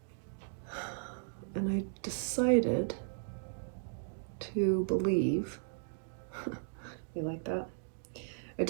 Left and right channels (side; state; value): left; silent; digital silence